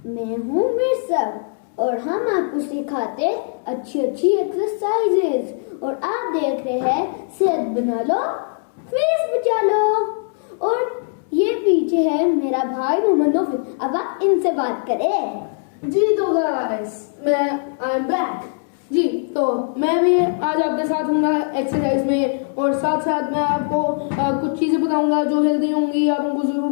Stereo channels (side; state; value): right; silent; 65 dB below the other